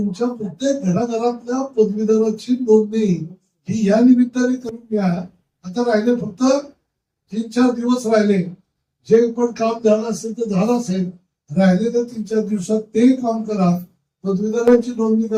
प्रत्येक घराघरातल्या पदवीधराची नोंदणी ही या निमित्ताने करून घ्या. आता राहिले फक्त 3-4 दिवस राहिले. जे पण काम झालं असेल तर झालं असेल, राहिलेल्या 3-4 दिवसात ते काम करा, पदवीधरांची नोंदणी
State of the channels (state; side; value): identical; both; correlation 1.00